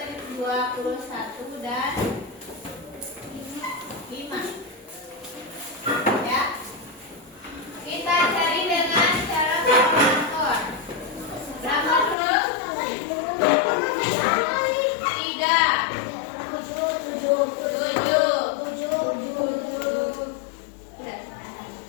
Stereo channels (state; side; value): drops out; right; at 12.2 s